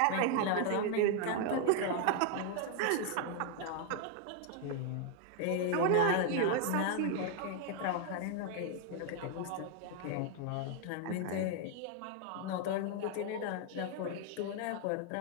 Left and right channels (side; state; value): both; different; correlation 0.00